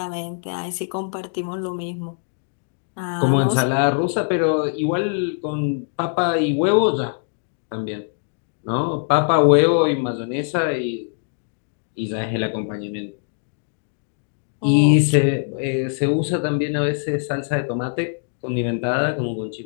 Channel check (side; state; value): right; silent; digital silence